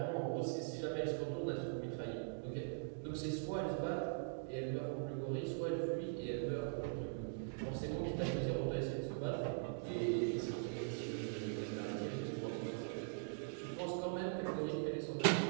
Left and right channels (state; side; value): silent; left; digital silence